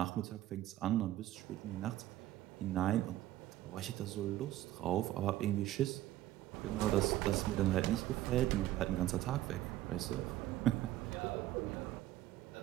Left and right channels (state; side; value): quieter; left; 14.6 dB